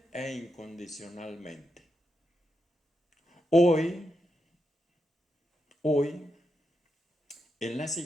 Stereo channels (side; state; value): both; normal; correlation 0.85